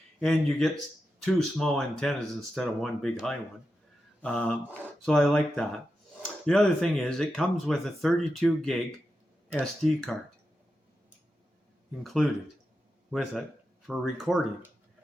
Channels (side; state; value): both; normal; correlation 0.89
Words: And you get two small antennas instead of one big high one. So I like that. The other thing is it comes with a 32 gig SD card included with it for recording.